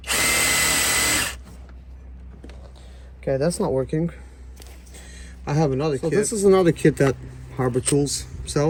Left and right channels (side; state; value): both; identical; correlation 1.00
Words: Okay, that's not working. I have another kit. This is another kit that Harbor Tools